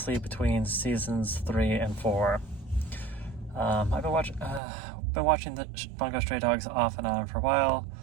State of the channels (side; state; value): left; drops out; at 4.6 s